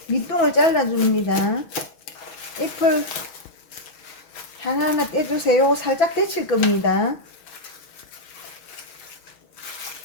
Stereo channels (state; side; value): late; right; 6.3 ms